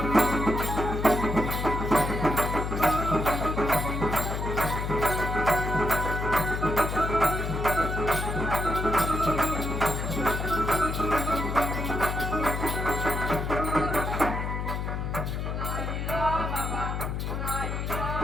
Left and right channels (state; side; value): noise; left; hum, 2 dB below the sound